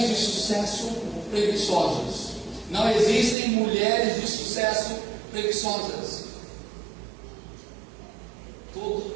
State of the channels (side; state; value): left; drops out; at 3.4 s